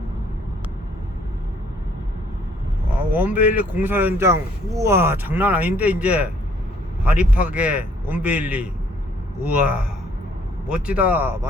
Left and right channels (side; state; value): both; normal; correlation 0.63